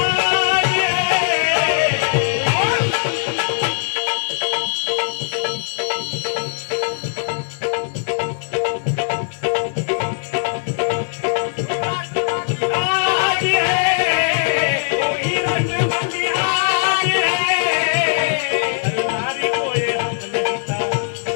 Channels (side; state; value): right; silent; digital silence